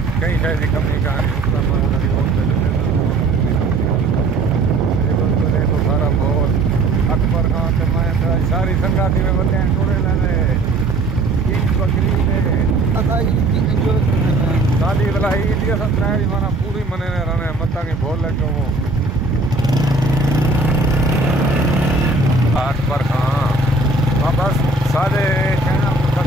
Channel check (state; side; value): quieter; left; 3.2 dB